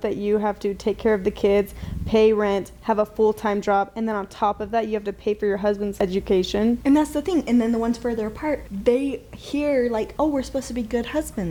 you have to take care of the kids, pay rent, have a full-time job, and then on top of that, you have to pay for your husband's education? And that's the thing. And then the ones further apart, they hear like, oh, we're supposed to be good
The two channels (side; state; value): both; identical; correlation 1.00